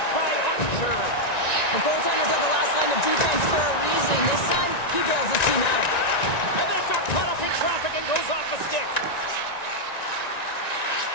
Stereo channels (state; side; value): late; right; 1.9 ms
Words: by Archer. The goaltenders are the last line of defense for a reason. This time, he bails his team out. And that got caught up in traffic and goes off the stick.